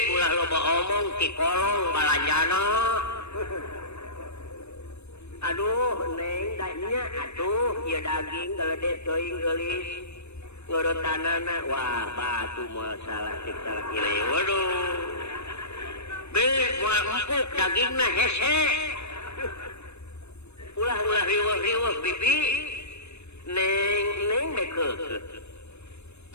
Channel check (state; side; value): late; right; 0.81 ms